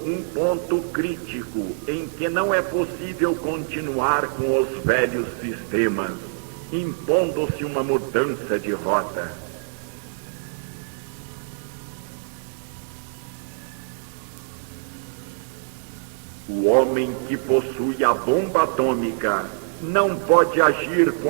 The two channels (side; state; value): left; silent; digital silence